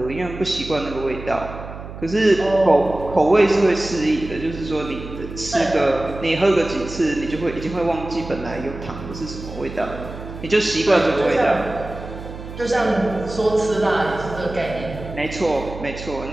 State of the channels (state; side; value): noise; right; hum, 12 dB below the sound